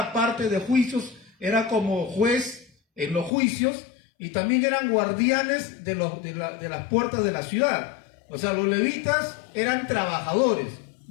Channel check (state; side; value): drops out; right; at 3.3 s